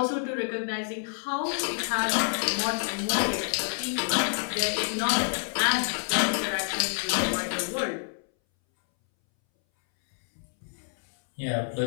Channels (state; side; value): silent; right; 60 dB below the other